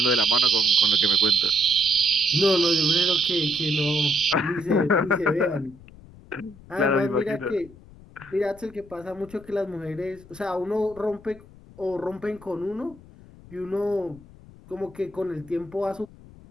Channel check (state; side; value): noise; left; rumble, 21 dB below the sound